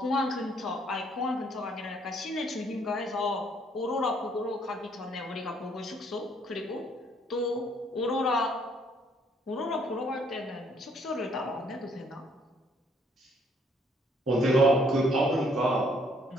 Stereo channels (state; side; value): normal; both; correlation 0.66